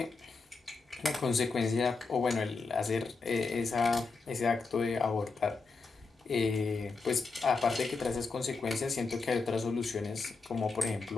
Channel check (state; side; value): quieter; right; 4.2 dB